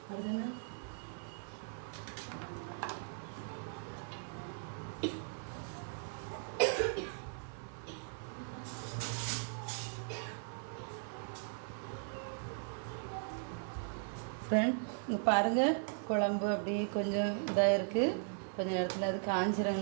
அதுன்னு ஃப்ரெண்ட் இங்கே பாருங்கள், குழம்பு அப்படியே கொஞ்சம் இதாக இருக்குது. கொஞ்சம் இடத்துல அது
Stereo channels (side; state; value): left; silent; 52 dB below the other